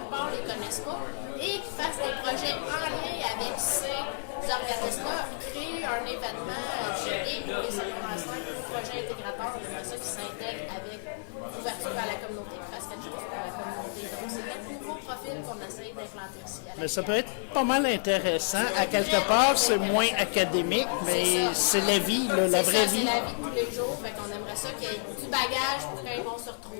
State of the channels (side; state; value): right; silent; 55 dB below the other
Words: ne les connaissent pas, et qu'ils fassent des projets en lien avec ces organismes-là, créer un événement et pour les secondaires 5, le projet intégrateur, on aimerait ça qu'ils s'intègrent avec ouverture à la communauté, qu'ils fassent quelque chose pour la communauté. Donc, c'est notre nouveau profil qu'on essaye d'implanter ici à la mais ça peut être pas mal intéressant. À quelque part, c'est moins académique, mais c'est la vie, la vraie vie. C'est ça, c'est la vie de tous les jours. Fait qu'on aimerait ça qu'il y ait du bagage pour quand ils vont se